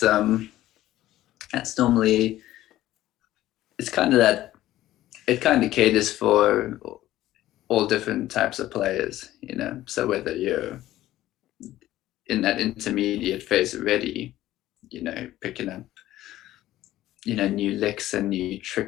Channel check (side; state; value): right; quieter; 14.6 dB